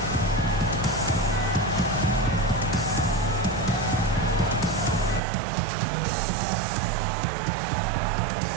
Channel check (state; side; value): drops out; left; at 5.2 s